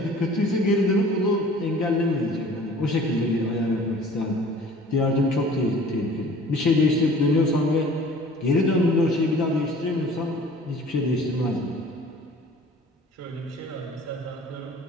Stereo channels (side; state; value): both; normal; correlation 0.48